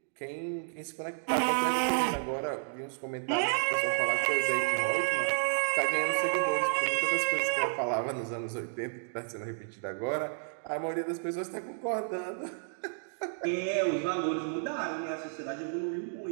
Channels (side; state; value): left; silent; digital silence